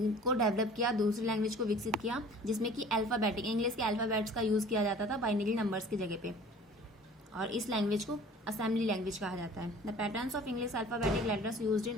डेवलप किया, दूसरी लैंग्वेज को विकसित किया, जिसमें कि अल्फाबेटिक, इंग्लिश के अल्फाबेट्स का यूज़ किया जाता था बाइनरी नंबर्स की जगह पे, और इस लैंग्वेज को असेंबली लैंग्वेज कहा जाता है. The patterns of English alphabetic letters used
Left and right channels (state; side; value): normal; both; correlation 0.47